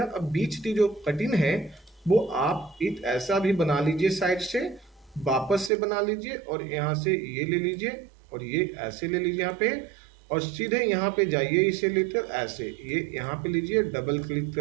अब बीच की जो कटिंग है वो आप एक ऐसा भी बना लीजिए, साइड से वापस से बना लीजिए, और यहाँ से ये ले लीजिए, और ये ऐसे ले लीजिए यहाँ पे, और सीधे यहाँ पे जाइए इसे लेकर ऐसे, ये यहाँ पे लीजिए डबल क्लिक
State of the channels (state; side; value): drops out; left; at 5.7 s